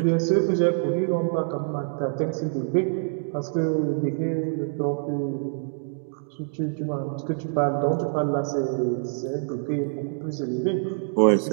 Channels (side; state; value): left; silent; digital silence